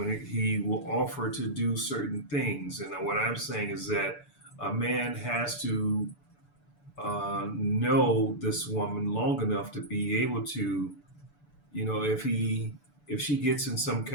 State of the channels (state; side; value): late; right; 6.9 ms